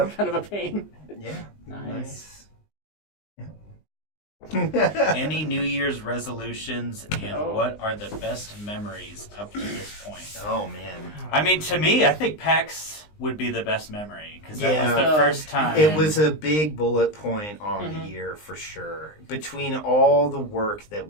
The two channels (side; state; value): right; late; 19 ms